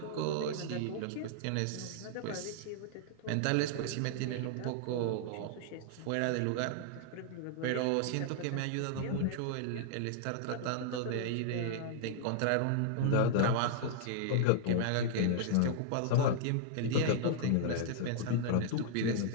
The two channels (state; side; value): different; both; correlation -0.01